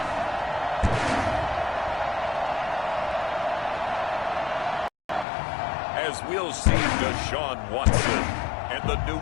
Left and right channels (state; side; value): drops out; right; at 5.2 s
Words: As we'll see Deshaun Watson and the